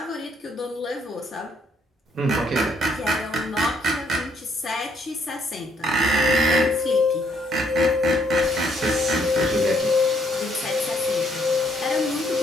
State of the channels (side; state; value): both; normal; correlation 0.69